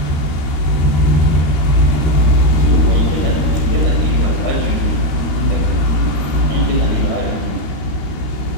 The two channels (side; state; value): right; late; 13 ms